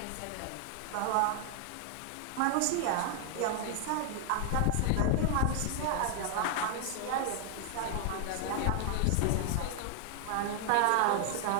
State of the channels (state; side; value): different; both; correlation 0.00